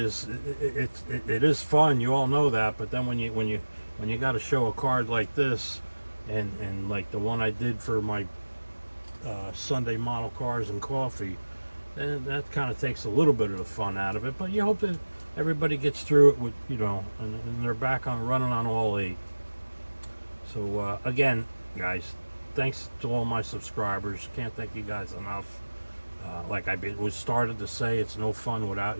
it is fun. You all know that. But then when you got to show a card like this, and like the one I did for my Sunday model cars and coffee, then that kind of takes a little bit of the fun out of it. But you hope that everybody gets through it with, you know, and they're back on running on all 8. So again, guys, thanks to all my subscribers. Can't thank you guys enough. Like I was started to say, it's no fun without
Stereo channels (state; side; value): inverted; both; correlation -1.00